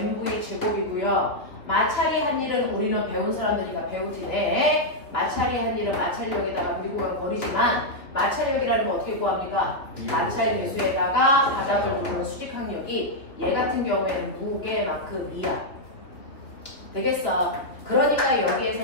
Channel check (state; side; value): late; right; 2.9 ms